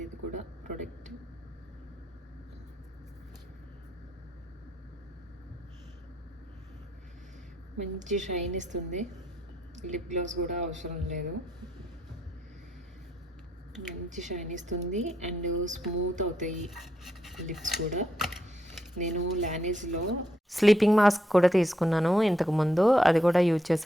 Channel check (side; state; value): both; normal; correlation 0.78